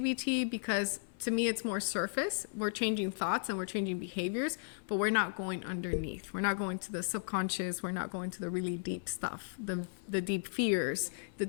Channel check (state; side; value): silent; right; 54 dB below the other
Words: because to me, it's more surface. We're changing thoughts and we're changing behaviors, but we're not going underneath. We're not going to the subconscious. We're not going to the really deep stuff, the deep fears, the